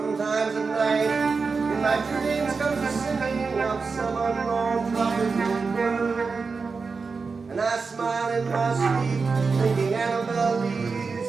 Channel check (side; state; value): left; quieter; 4.7 dB